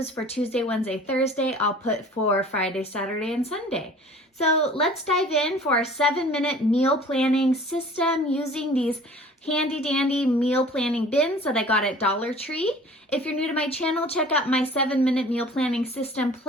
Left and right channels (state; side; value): normal; both; correlation 0.47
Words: for Tuesday, Wednesday, Thursday, I'll put for Friday, Saturday, and Sunday. So let's dive in for our 7-minute meal planning system using these handy dandy meal planning bins that I got at Dollar Tree. If you're new to my channel, check out my 7-minute meal planning system